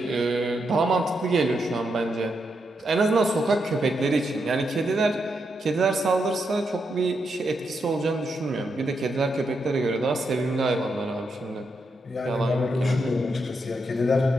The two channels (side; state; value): both; normal; correlation 0.82